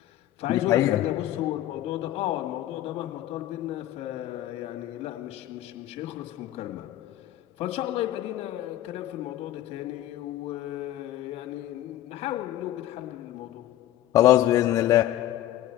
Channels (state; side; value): quieter; right; 13.5 dB